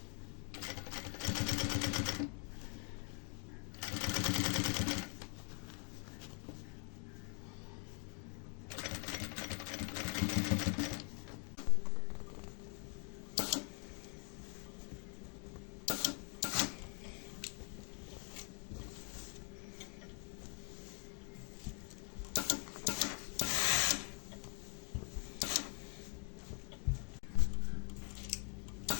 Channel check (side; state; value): right; quieter; 40.0 dB